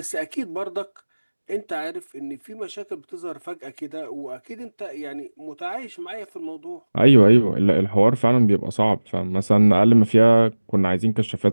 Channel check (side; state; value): both; inverted; correlation -1.00